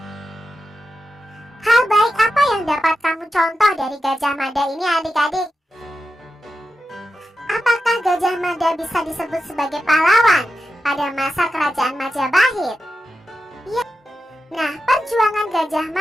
Hal baik apa yang dapat kamu contoh dari Gajah Mada ini adik-adik? Apakah Gajah Mada bisa disebut sebagai pahlawan pada masa Kerajaan Majapahit? Ya. Nah, perjuangan Gajah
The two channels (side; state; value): both; normal; correlation 0.90